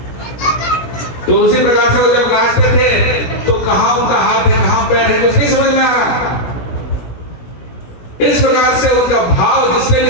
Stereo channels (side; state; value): right; late; 16 ms